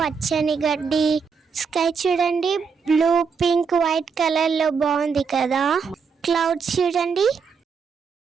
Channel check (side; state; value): left; quieter; 5.7 dB